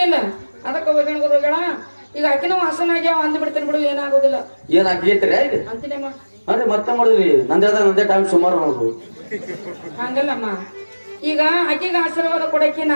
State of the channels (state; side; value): inverted; both; correlation -1.00